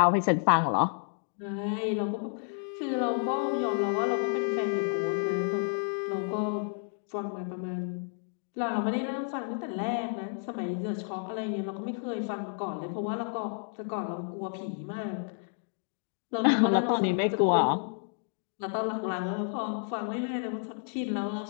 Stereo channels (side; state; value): right; silent; 57 dB below the other